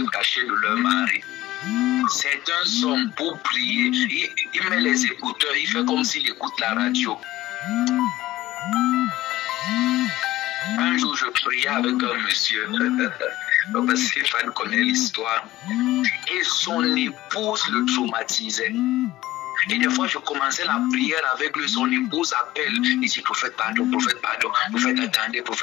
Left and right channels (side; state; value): right; quieter; 16.2 dB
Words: cacher de leur mari. Certains hommes pour prier, il met les écouteurs, il fait comme s'il écoute la radio. Un jour, je priais avec un monsieur, parce que Stéphane connaît l'histoire, et son épouse le traumatisait. Et des fois, je commençais la prière avec lui, son épouse appelle, il dit, prophète, pardon, prophète, attendez,